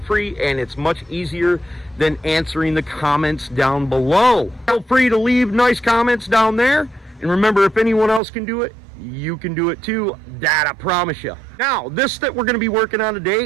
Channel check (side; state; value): left; drops out; at 8.2 s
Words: and it's much easier than answering the comments down below. Feel free to leave nice comments down there. And remember, if anyone else can do it, you can do it too. That I promise you. Now, this that we're going to be working on